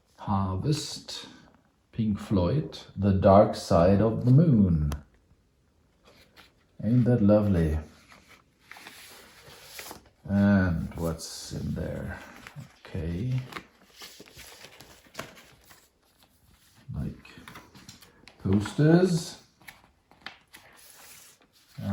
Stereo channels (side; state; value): both; identical; correlation 1.00